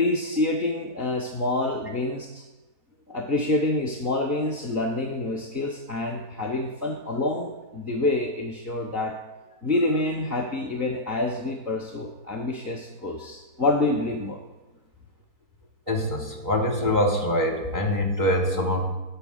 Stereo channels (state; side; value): late; left; 3.8 ms